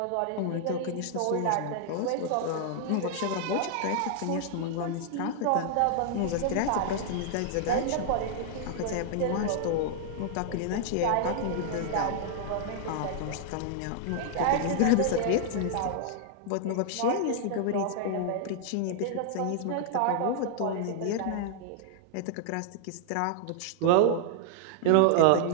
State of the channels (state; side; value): different; both; correlation -0.01